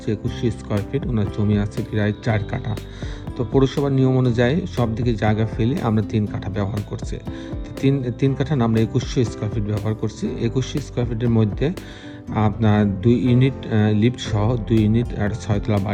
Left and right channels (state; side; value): identical; both; correlation 1.00